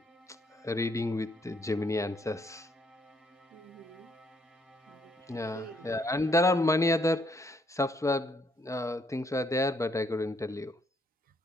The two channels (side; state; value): both; normal; correlation 0.70